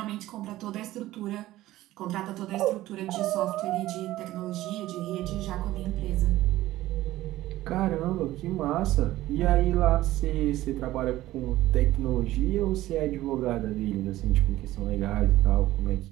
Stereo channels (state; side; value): quieter; left; 15.8 dB